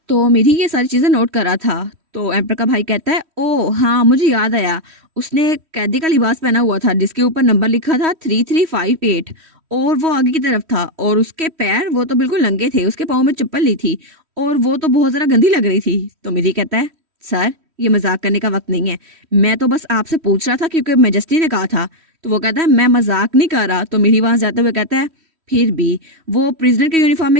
तो मेरी ये सारी चीजें नोट करा था। तो एम्पर का भाई कहता है ओ हाँ मुझे याद आया, उसने कैदी का लिबास पहना हुआ था जिसके ऊपर नंबर लिखा था 3358, और वो आगे की तरफ था, और उसके पैर वो तो बिल्कुल नंगे थे, उसके पाँव में चप्पल नहीं थी, और वो तो बहुत जरा गंदी लग रही थी। तो मेरी कहता है सर ये मजाक करने का वक्त नहीं है, मैं तो बस आपसे पूछ रहा था क्योंकि मैजेस्टी ने कहा था। तो वो कहता है मैं मजाक नहीं कर रहा। तो मेरी वहां जाते हुए कहता है फिर भी वो प्रिजनर के यूनिफॉर्म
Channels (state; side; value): late; left; 3.1 ms